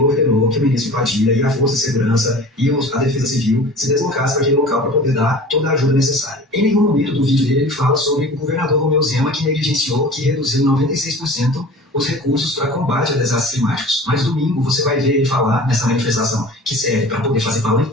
ordenou que o ministro Padilha e a Força de Segurança e a Defesa Civil se deslocassem para aquele local para poder dar toda a ajuda necessária. Em nenhum momento do vídeo dele ele fala sobre o governador Romeu Zema, que negligenciou, que reduziu 96% os recursos para combate a desastres climáticos. Mas domingo você vai ver ele falar nessa manifestação, que serve para poder fazer palanque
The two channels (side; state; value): both; normal; correlation 0.40